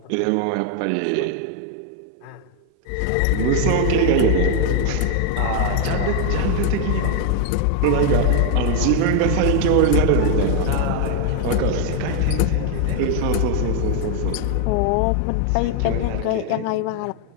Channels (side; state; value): both; different; correlation 0.01